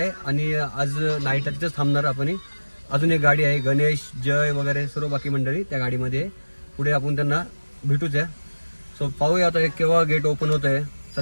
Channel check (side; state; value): both; inverted; correlation -1.00